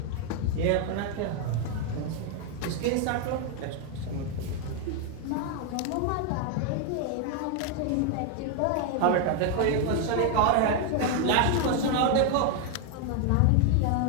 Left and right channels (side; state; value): both; different; correlation 0.01